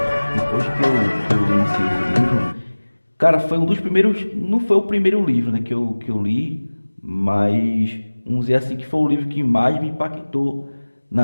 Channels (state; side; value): inverted; both; correlation -1.00